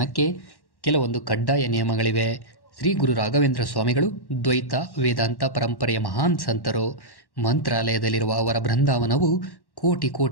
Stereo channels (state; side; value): late; right; 1.1 ms